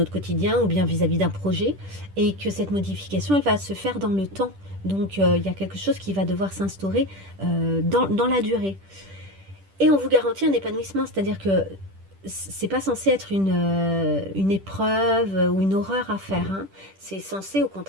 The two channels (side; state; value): left; late; 10 ms